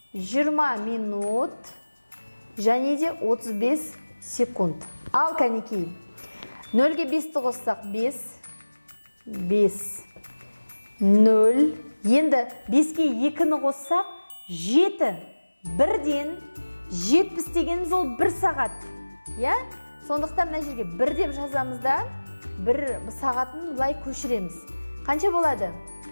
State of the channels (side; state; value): both; inverted; correlation -1.00